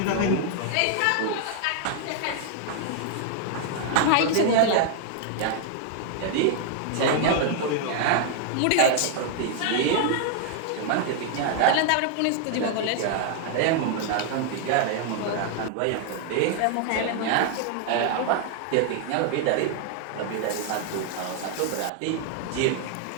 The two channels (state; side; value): different; both; correlation 0.00